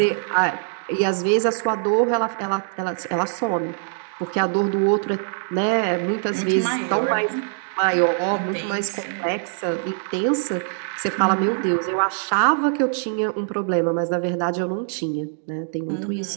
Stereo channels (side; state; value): left; silent; digital silence